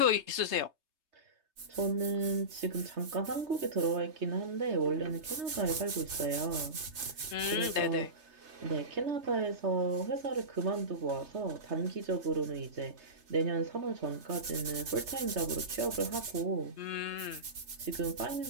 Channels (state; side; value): late; left; 3.3 ms